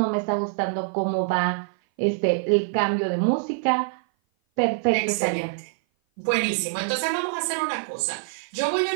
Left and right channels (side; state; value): left; silent; 56 dB below the other